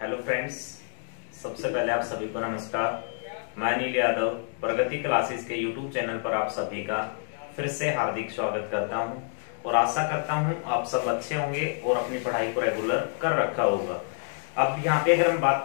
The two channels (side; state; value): right; silent; digital silence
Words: Hello friends, सबसे पहले आप सभी को नमस्कार। मैं अनिल यादव प्रगति क्लासेस के यूट्यूब चैनल पर आप सभी का फिर से हार्दिक स्वागत करता हूं और आशा करता हूं आप सब अच्छे होंगे और अपनी पढ़ाई को रेगुलर कर रखा होगा। अब यहाँ पे अगर हम बात